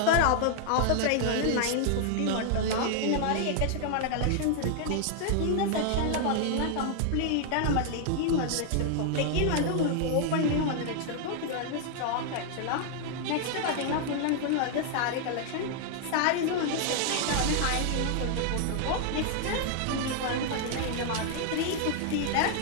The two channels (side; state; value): both; different; correlation 0.00